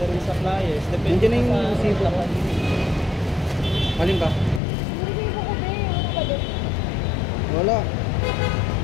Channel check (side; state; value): right; drops out; at 4.6 s